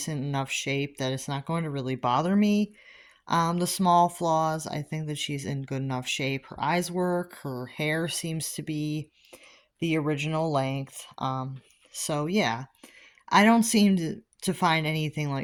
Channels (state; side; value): identical; both; correlation 1.00